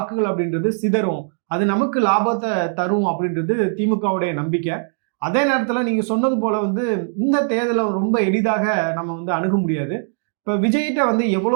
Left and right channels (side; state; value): left; silent; 66 dB below the other